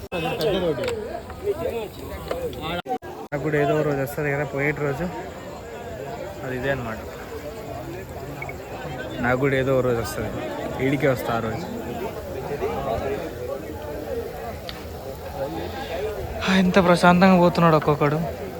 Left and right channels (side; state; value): both; identical; correlation 1.00